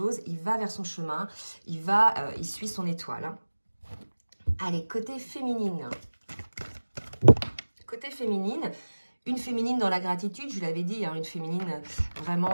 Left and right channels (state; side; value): inverted; both; correlation -1.00